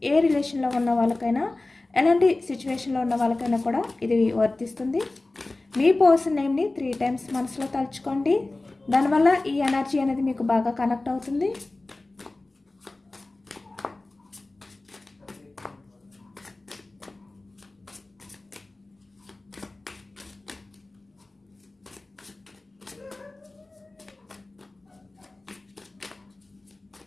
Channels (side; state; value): right; quieter; 3.0 dB